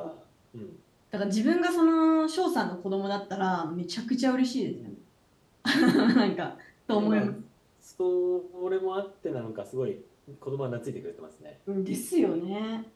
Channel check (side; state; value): both; identical; correlation 1.00